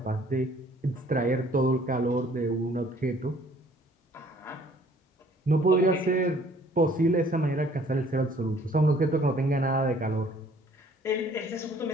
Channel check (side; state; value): both; normal; correlation 0.57